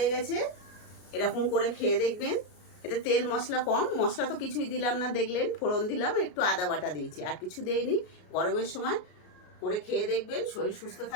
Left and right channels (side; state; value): right; late; 33 ms